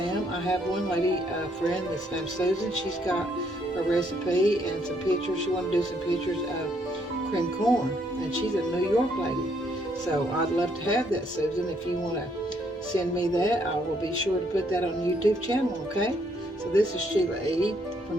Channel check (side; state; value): both; normal; correlation 0.71